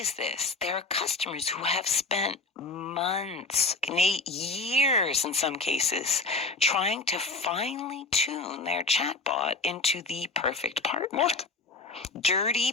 this. There are customers who have spent months, years in some cases, trying to finely tune their chatbot into the perfect partner. What? Dirty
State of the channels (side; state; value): right; quieter; 3.5 dB